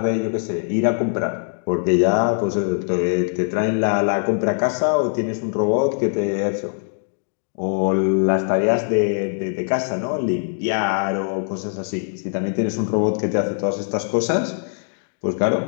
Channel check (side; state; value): right; silent; 64 dB below the other